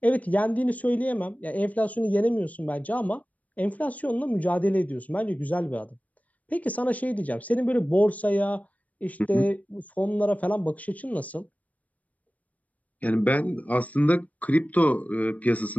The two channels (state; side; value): late; right; 0.072 ms